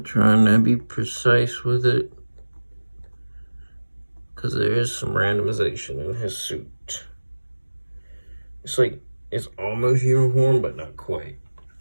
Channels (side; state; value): both; inverted; correlation -1.00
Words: trying to be precise with it, because there is some randomization in his suit. It's like, it's almost uniform, but not quite.